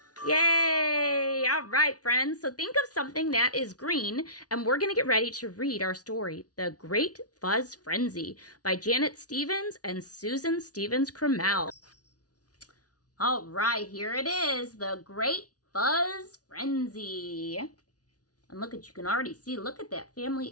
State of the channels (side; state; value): right; late; 0.68 ms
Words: Yay! All right, friends. So think of something that is green, and we're going to get ready to read our story, The Great Fuzz Frenzy, by Janet Stevens and Susan Stevens Crummell. All right, here it is, The Great Fuzz Frenzy. And look at, you can already see, look at that